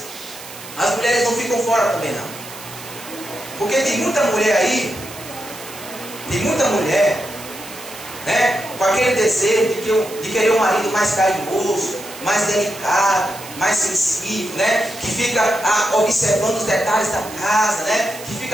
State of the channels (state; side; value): noise; right; hiss, 15 dB below the sound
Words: as mulheres não ficam fora também não. Porque tem muita mulher aí, né, com aquele desejo de querer um marido mais carinhoso, mais delicado, mais sensível, né, que fica observando os detalhes da casa, né, que